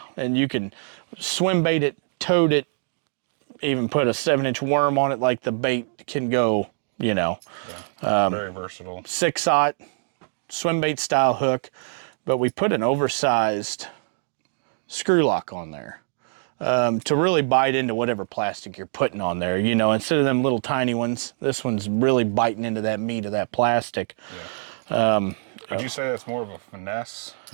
you can swim bait it, toad it, even put a 7-inch worm on it, like the bait can go, very versatile. 6-aught swim bait style hook, but we put an oversized screw lock on there to really bite into whatever plastic you're putting on there. Instead of them little tiny ones, this one's really biting into that meat of that plastic. Yeah. Would you say that's more of a finesse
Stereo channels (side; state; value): left; silent; 63 dB below the other